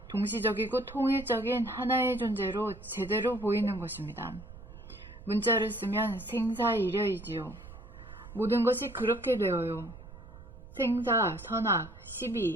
동시적이고 통일적인 하나의 존재로 제대로 보이는 것입니다. 문자를 쓰면 생사일혈이지요. 모든 것이 그렇게 되어요. 생사, 선악,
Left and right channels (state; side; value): noise; right; rumble, 16 dB below the sound